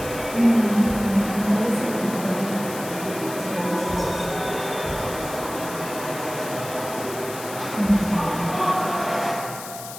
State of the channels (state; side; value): noise; left; hiss, 12 dB below the sound